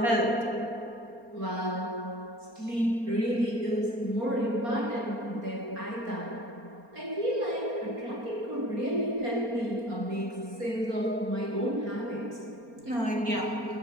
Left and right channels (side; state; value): left; late; 4.3 ms